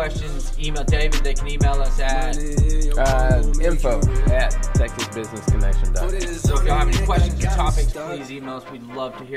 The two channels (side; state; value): both; identical; correlation 1.00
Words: email David. They can email us at info@texasbusinessconnection.com. So if y'all have any questions or topics, please email us. We'd love to